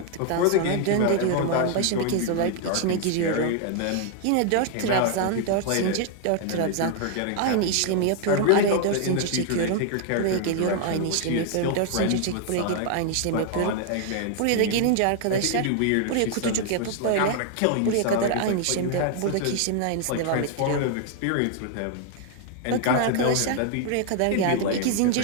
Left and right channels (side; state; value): both; different; correlation 0.00